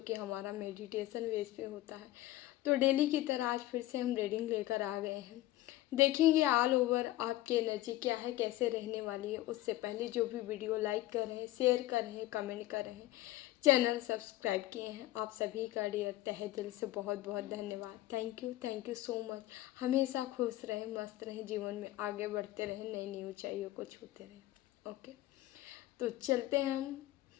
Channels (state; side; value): quieter; right; 15.9 dB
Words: हमारा मेडिटेशन बेस पे होता है। तो डेली की तरह आज फिर से हम रीडिंग लेकर आ गए हैं। देखेंगे ऑल ओवर आपकी एनर्जी क्या है, कैसे रहने वाली है। उससे पहले जो भी वीडियो लाइक कर रहे हैं, शेयर कर रहे हैं, कमेंट कर रहे हैं, चैनल सब्सक्राइब किए हैं, आप सभी का डियर तहे दिल से बहुत बहुत धन्यवाद। Thank you so much. हमेशा खुश रहें, मस्त रहें, जीवन में आगे बढ़ते रहें, नई नई ऊंचाइयों को छूते रहें। ओके, तो चलते हैं हम